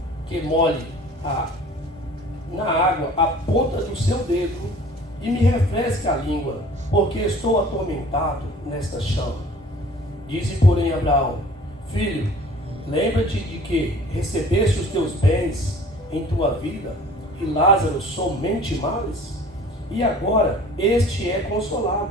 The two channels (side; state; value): both; normal; correlation 0.48